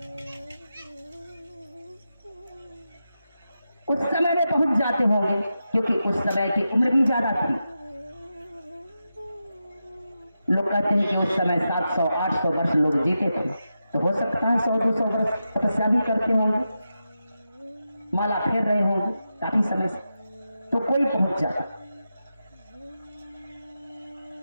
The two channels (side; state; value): both; inverted; correlation -0.89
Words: उस समय में पहुंच जाते होंगे, क्योंकि उस समय की उम्र भी ज्यादा थी। लोग कहते हैं कि उस समय 700-800 वर्ष लोग जीते थे, तो हो सकता है 100-200 वर्ष तपस्या भी करते होंगे, माला फेर रहे होंगे काफी समय से, तो कोई पहुंच जाता।